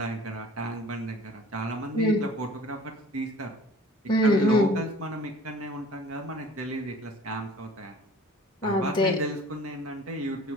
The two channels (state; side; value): normal; both; correlation 0.48